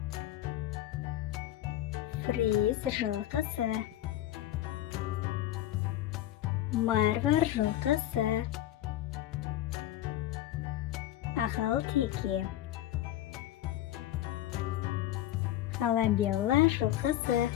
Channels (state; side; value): quieter; right; 13.4 dB